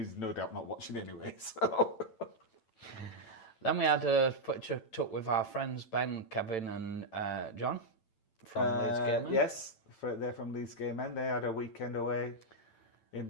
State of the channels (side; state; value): right; late; 9.0 ms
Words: no doubt not watching anyway, so... Then we had a picture took with our friends Ben, Kevin and John from Leeds Game Men. Yes, they're from Leeds Game Men. They had a weekend away